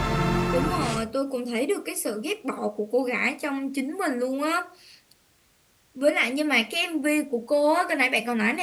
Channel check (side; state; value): both; identical; correlation 1.00